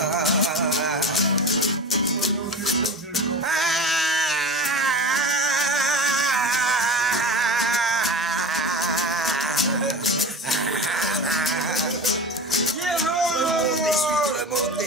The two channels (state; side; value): normal; both; correlation 0.32